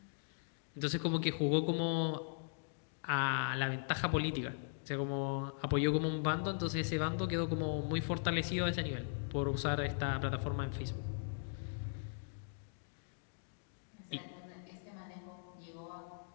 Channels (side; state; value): right; silent; digital silence